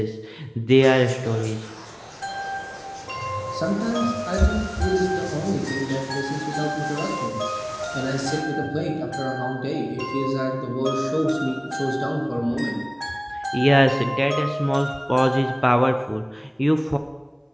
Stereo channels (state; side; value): identical; both; correlation 1.00